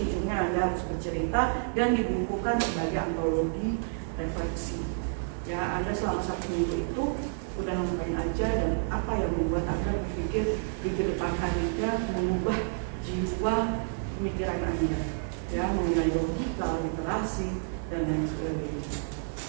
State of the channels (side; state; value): left; silent; digital silence